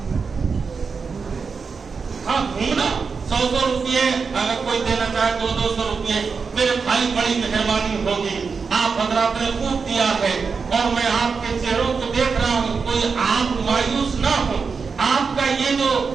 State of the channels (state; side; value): quieter; left; 5.2 dB